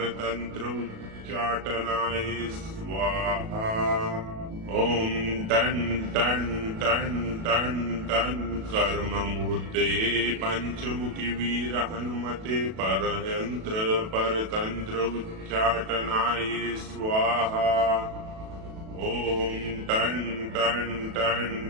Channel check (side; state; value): left; late; 37 ms